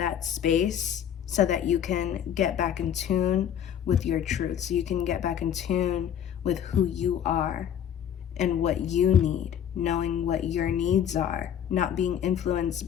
space so that you can get back in tune with your truth, so you can get back in tune with who you are and what you need, knowing what your needs are, not being influenced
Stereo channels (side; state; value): right; quieter; 9.3 dB